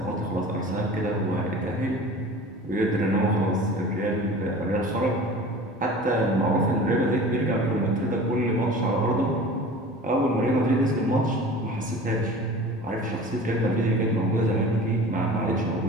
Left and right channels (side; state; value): both; normal; correlation 0.40